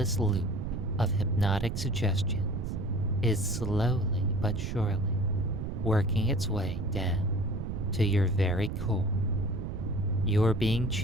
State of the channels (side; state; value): right; noise; rumble, 4 dB below the sound